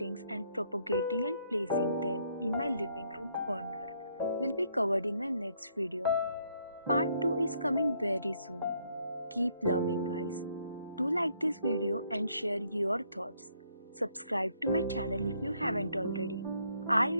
and propagating and placing them in my living room corner will be covered in my next video. Part 2 is coming very soon. Keep loving, guys. Do like this video and share your thoughts. Subscribe to my channel if you haven't already. I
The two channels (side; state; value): both; inverted; correlation -0.70